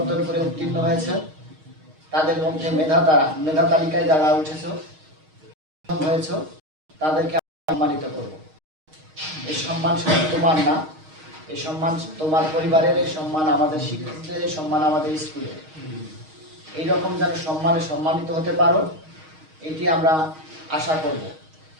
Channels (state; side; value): late; left; 6.4 ms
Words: করে উত্তীর্ণ হয়েছে, তাদের মধ্যে মেধা তালিকায় যারা হয়েছে তাদেরকে সম্মানিত করব। এই সম্মান শুধু তোমার না, এই সম্মান তোমার পরিবারের, এই সম্মান আমাদের শিক্ষকদের, এই সম্মান আমাদের স্কুলের। এইরকম যেন সম্মানে সম্মানিত হতে পারো, এটি আমরা আশা করব।